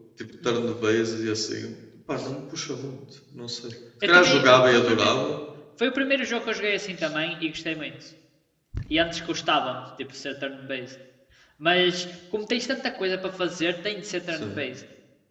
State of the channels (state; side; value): identical; both; correlation 1.00